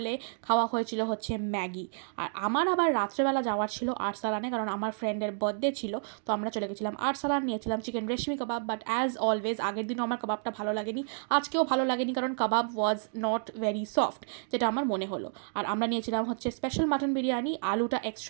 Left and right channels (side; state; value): left; silent; digital silence